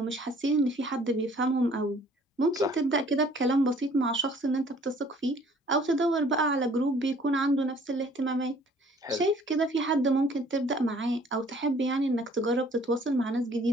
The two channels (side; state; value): both; normal; correlation 0.56